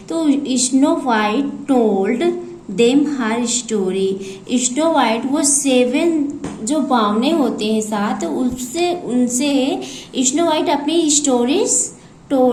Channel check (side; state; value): both; identical; correlation 1.00